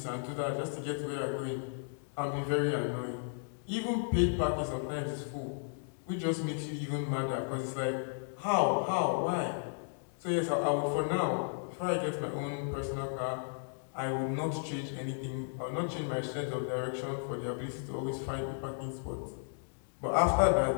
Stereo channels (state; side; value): silent; right; digital silence